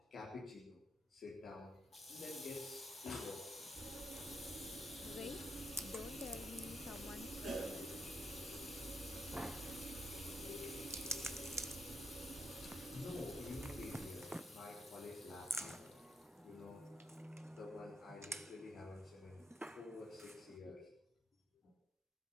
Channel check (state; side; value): normal; both; correlation 0.78